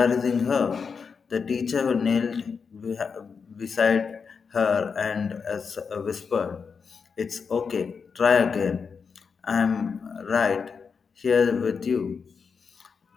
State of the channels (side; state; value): right; quieter; 5.7 dB